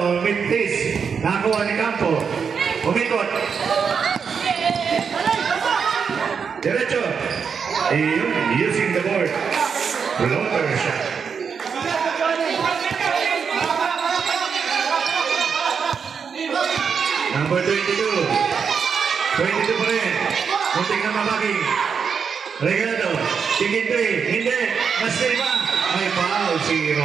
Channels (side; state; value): left; quieter; 6.3 dB